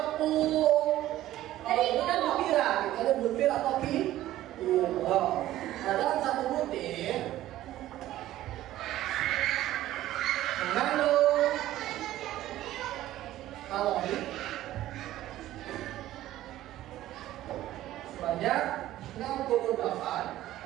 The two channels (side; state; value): left; quieter; 14.4 dB